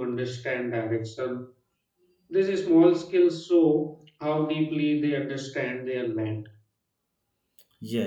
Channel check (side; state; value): both; identical; correlation 1.00